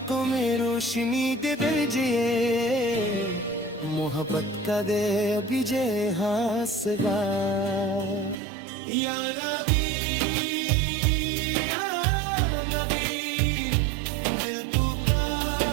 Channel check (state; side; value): drops out; left; at 8.3 s